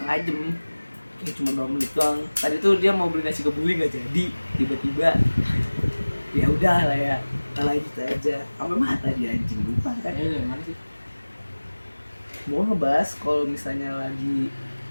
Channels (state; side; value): inverted; both; correlation -1.00